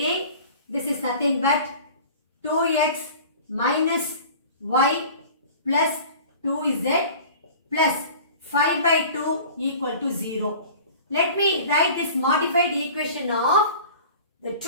this is nothing but 2x minus y plus 2z plus 5 by 2 equal to 0. Let me write this modified equation of the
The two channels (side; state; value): both; inverted; correlation -0.42